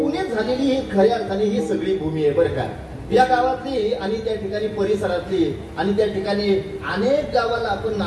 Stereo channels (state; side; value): identical; both; correlation 1.00